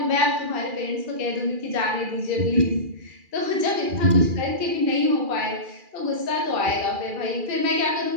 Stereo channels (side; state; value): left; late; 2.4 ms